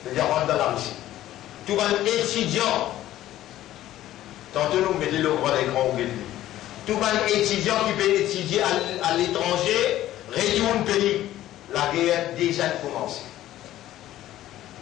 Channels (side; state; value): right; quieter; 13.8 dB